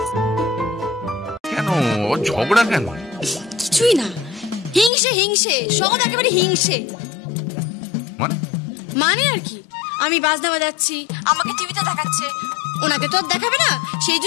কেন ঝগড়া কেন? কিছুই না, হিংসে হিংসে, সব একেবারে হিংসে। মানে আর কি, আমি বাজনা বাজাচ্ছি, আমাকে টিভিতে দেখাচ্ছে, ওনাকে তো আর দেখাবে না, সেই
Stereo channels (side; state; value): right; drops out; at 4.9 s